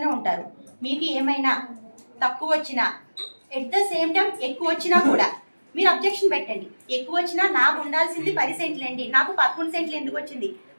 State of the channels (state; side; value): inverted; both; correlation -1.00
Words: ఉంటారు. మీకు ఏమైనా తక్కువ వచ్చినా, ఎట్ ద సేమ్ టైం ఎక్కువ వచ్చినా కూడా మీరు అబ్జెక్షన్ పెట్టండి. ఎక్కువ వచ్చినా నాకు ఉండాల్సింది 10 సెంట్లు అండి, నాకు 13 సెంట్లు ఎందుకు వచ్చింది